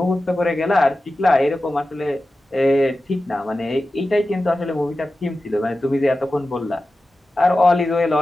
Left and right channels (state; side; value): normal; both; correlation 0.94